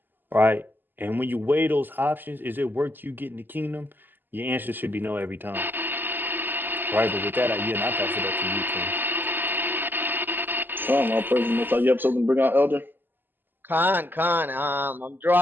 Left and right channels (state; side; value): late; left; 0.092 ms